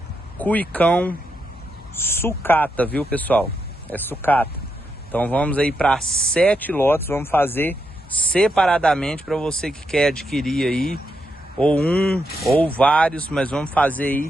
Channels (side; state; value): both; normal; correlation 0.82